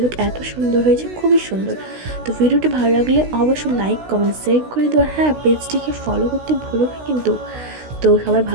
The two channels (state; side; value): late; left; 16 ms